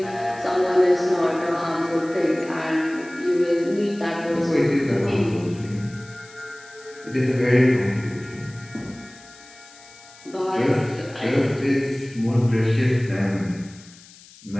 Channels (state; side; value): noise; left; hiss, 22 dB below the sound